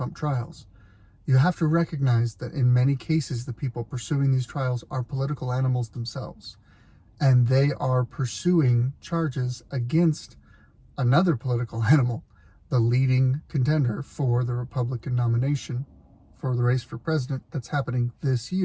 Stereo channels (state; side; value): identical; both; correlation 1.00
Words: trials, you have to recognize that in many cases, the people pursuing these trials are political animals themselves, and they are pursuing charges against another political animal, the leading contender for the Republican nomination for the race for president that's happening this